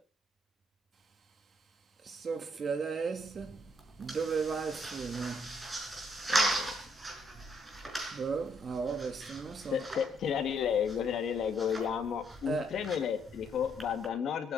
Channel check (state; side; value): normal; both; correlation 0.71